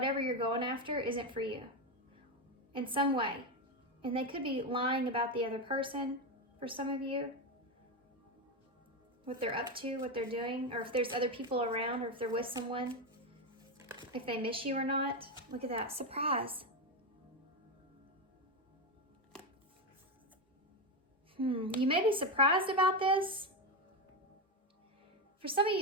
you're going after isn't for you in some way. And they could be lying about the other person for some of you. What they're up to, what they're doing, or if there's other people around, or if they're with someone, if they miss you or not. Look at that, surprise. You may be surprised about this. For some of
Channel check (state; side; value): normal; both; correlation 0.12